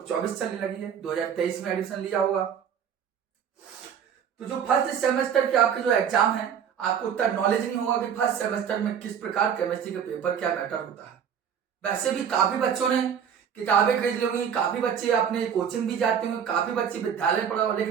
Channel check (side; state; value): left; quieter; 8.0 dB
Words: चलने लगी है, 2023 में एडमिशन लिया होगा। तो जो फर्स्ट सेमेस्टर के आपके जो एग्जाम है, आपको उतना नॉलेज नहीं होगा कि फर्स्ट सेमेस्टर में किस प्रकार केमिस्ट्री का पेपर क्या मैटर होता है। वैसे भी काफी बच्चों ने किताबें खरीद ली होंगी, काफी बच्चे अपने कोचिंग भी जाते होंगे, काफी बच्चे विद्यालय पढ़ा होगा,